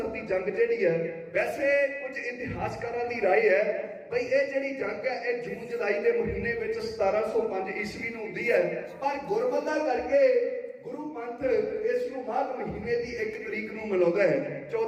ਦੀ ਜੰਗ ਜਿਹੜੀ ਹੈ, ਵੈਸੇ ਕੁਝ ਇਤਿਹਾਸਕਾਰਾਂ ਦੀ ਰਾਏ ਹੈ ਬਈ ਇਹ ਜਿਹੜੀ ਜੰਗ ਹੈ ਇਹ ਜੂਨ ਜੁਲਾਈ ਦੇ ਮਹੀਨੇ ਵਿੱਚ 1705 ਈਸਵੀ ਨੂੰ ਹੁੰਦੀ ਹੈ, ਪਰ ਗੁਰਮਤਿ ਕਰਕੇ ਗੁਰੂ ਪੰਥ ਇਸ ਨੂੰ ਮਾਘ ਮਹੀਨੇ ਦੀ 1 ਤਰੀਕ ਨੂੰ ਮਨਾਉਂਦਾ ਹੈ,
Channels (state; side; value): identical; both; correlation 1.00